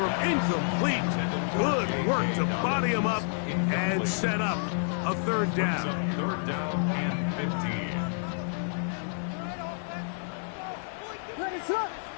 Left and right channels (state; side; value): silent; right; 56 dB below the other